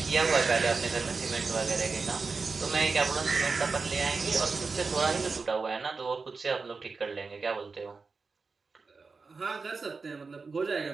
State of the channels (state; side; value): quieter; left; 4.5 dB